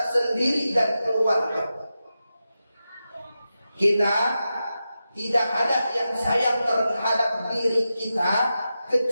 sendiri dan keluarga. Kita tidak ada yang sayang terhadap diri kita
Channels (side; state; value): both; inverted; correlation -0.91